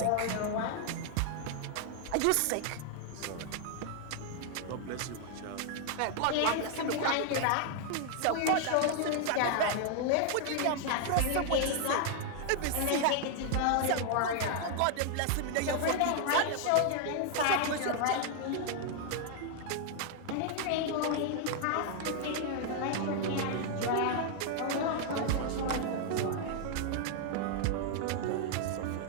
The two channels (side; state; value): both; different; correlation 0.00